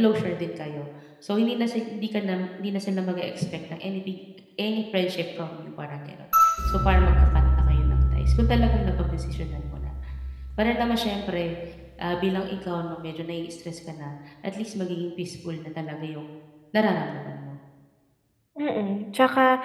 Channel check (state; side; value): identical; both; correlation 1.00